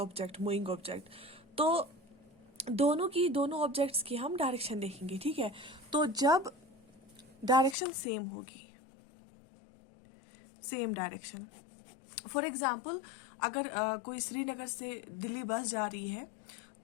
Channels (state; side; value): drops out; right; at 7.8 s